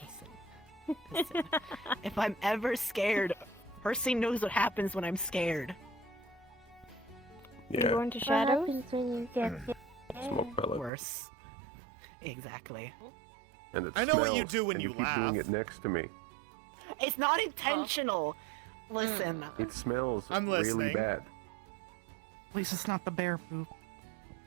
Listen. If I'm ever scared, Percy knows what happens when I'm scared. You Yeah, going to shadows? What happens when you get smoke pellet. Worse. Exactly. And it I know what you smells, do when and you keep laugh. doing it next to me. It's not intentional. Listen. It smells I'm really listening. bad. At least it's not the bear poop.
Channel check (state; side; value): drops out; left; at 10.9 s